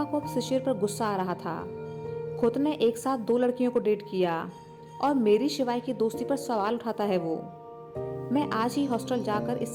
को अब शिशिर पर गुस्सा आ रहा था। खुद ने एक साथ दो लड़कियों को डेट किया और मेरी शिवाय की दोस्ती पर सवाल उठाता है वो। मैं आज ही हॉस्टल जाकर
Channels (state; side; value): identical; both; correlation 1.00